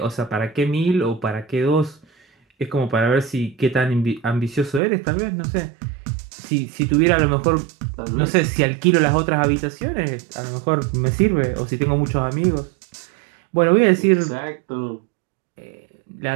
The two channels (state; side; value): drops out; left; at 4.8 s